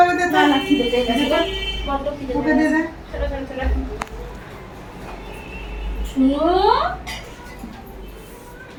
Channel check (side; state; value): both; identical; correlation 1.00